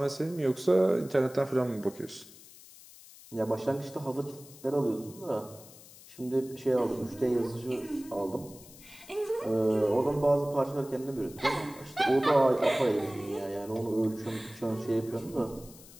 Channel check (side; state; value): left; noise; hiss, 20 dB below the sound